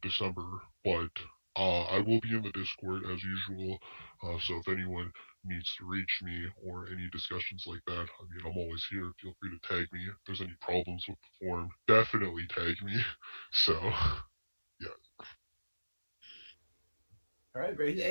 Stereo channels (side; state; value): both; inverted; correlation -1.00